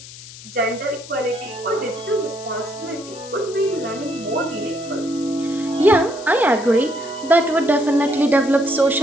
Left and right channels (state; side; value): noise; left; hiss, 16 dB below the sound